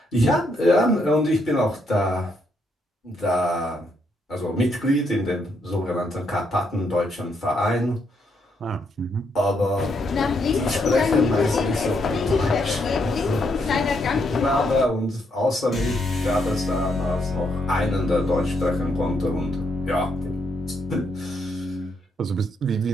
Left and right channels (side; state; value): both; normal; correlation 0.76